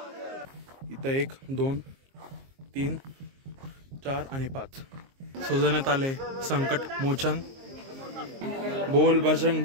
इथं 1 2 3 4 आणि 5 सजवण्यात आले संकट मोचन। बोल बजरंग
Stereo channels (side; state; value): left; late; 22 ms